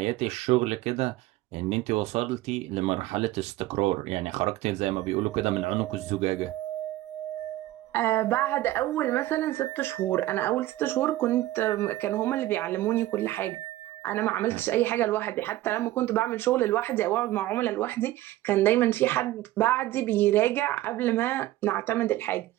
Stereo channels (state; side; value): quieter; left; 16.1 dB